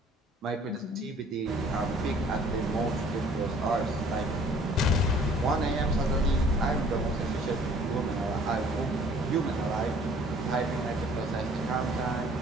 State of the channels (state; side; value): normal; both; correlation 0.55